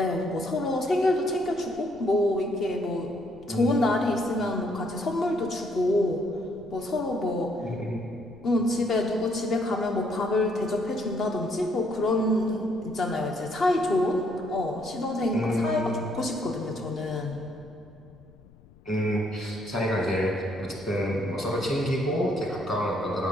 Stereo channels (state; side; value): noise; left; rumble, 24 dB below the sound